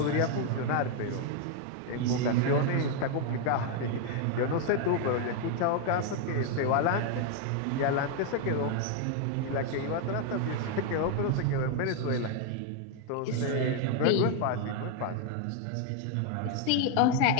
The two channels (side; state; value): both; different; correlation 0.00